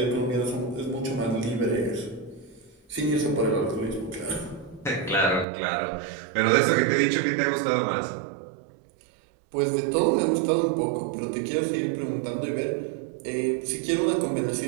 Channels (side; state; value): left; drops out; at 5.5 s